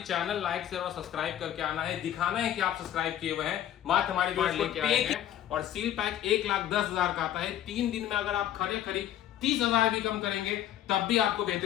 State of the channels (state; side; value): quieter; right; 11.5 dB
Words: लाइक शेयर और सब्सक्राइब करके आना है, दिखाना है कि आप सब्सक्राइब किए हुए हैं, मात्र हमारे वीडियो लेके आएंगे। और सील पैक 1,10,000 का आता है। 3 दिन में अगर आप खरी 30,000 भी कम करेंगे तब भी आपको